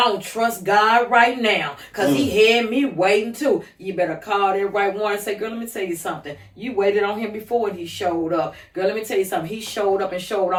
don't trust God right now. Because he had me waiting too. You better call that right one and say, girl, let me tell you something. You waited on him before and he showed up. Girl, let me tell you something. He showed up and showed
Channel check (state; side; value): identical; both; correlation 1.00